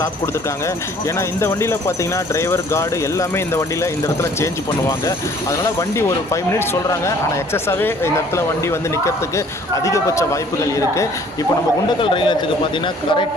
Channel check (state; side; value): normal; both; correlation 0.56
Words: கொடுத்துருக்காங்க. ஏன்னா இந்த வண்டியில் பார்த்தீங்கன்னா டிரைவர் கார்டு எல்லாமே இந்த வண்டியில் இந்த இடத்துல சேஞ்ச் பண்ணுவாங்க. அதனால் வண்டி ஒரு 5 மினிட்ஸ் சொல்கிறாங்க. ஆனால் எக்ஸஸாகவே இந்த இடத்துல வண்டி வந்து நிற்கிறதுக்கு அதிகபட்ச வாய்ப்புகள் இருக்குது. இப்போ நம்ம குண்டக்கல் ரயில் நிலையத்துக்கு பார்த்தீங்கன்னா